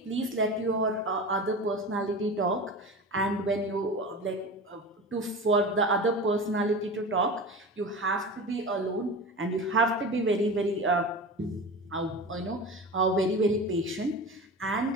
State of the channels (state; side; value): normal; both; correlation 0.30